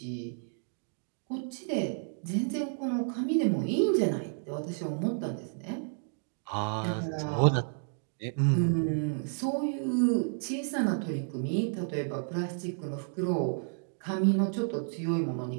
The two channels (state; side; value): silent; left; digital silence